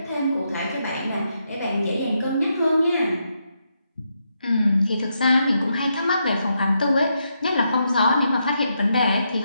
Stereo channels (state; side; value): inverted; both; correlation -0.81